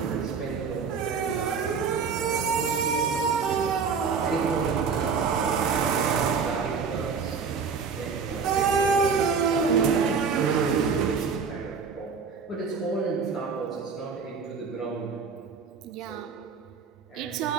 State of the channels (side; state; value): left; quieter; 5.7 dB